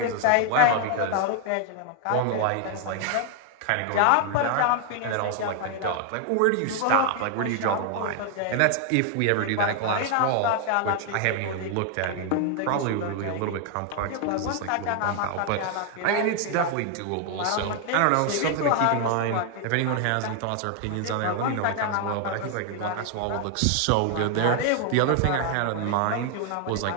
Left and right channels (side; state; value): both; different; correlation 0.00